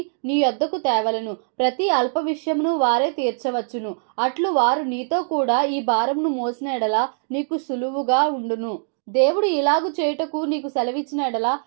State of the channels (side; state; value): left; silent; digital silence